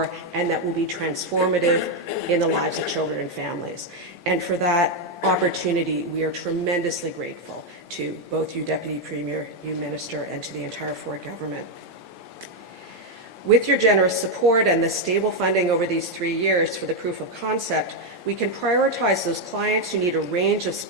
and that will be transformative in the lives of children and families. And for that opportunity, we are tremendously grateful to both you, Deputy Premier, you, Minister, and to the entire Ford government. With your generous support and the stable funding over these 3 years for the proof of concept, we can prioritize those clients who need a range of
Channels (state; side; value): normal; both; correlation 0.03